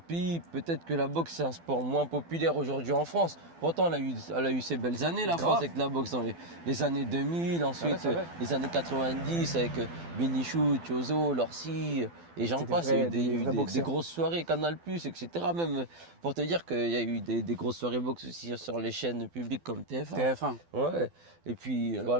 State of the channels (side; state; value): left; late; 12 ms